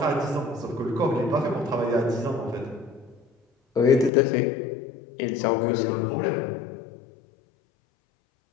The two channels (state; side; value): drops out; right; at 4.1 s